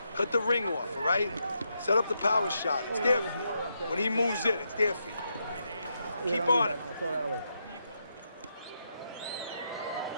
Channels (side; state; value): both; inverted; correlation -0.82